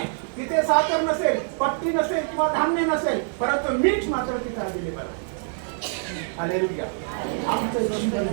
तिथे साखर नसेल, पत्ती नसेल किंवा धान्य नसेल, परंतु मीठ मात्र तिथे अवेलेबल आहे. हालेलुया. आमचं जीवन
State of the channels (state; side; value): silent; left; 58 dB below the other